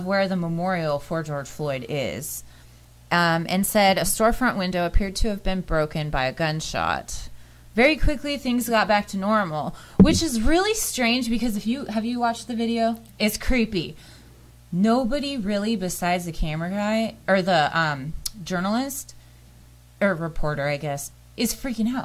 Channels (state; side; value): identical; both; correlation 1.00